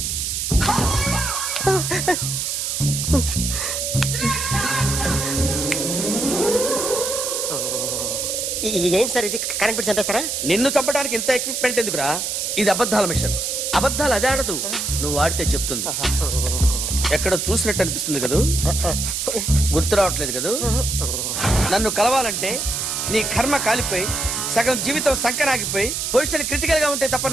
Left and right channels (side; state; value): right; noise; hiss, 2 dB below the sound